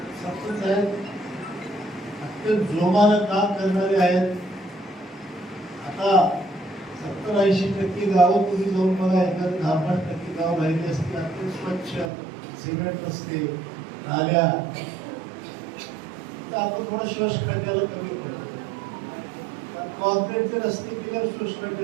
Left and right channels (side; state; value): left; drops out; at 12.1 s